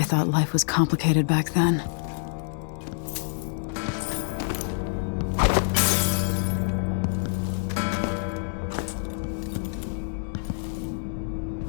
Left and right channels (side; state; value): right; silent; digital silence